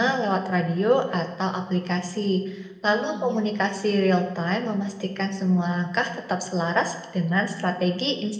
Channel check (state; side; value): identical; both; correlation 1.00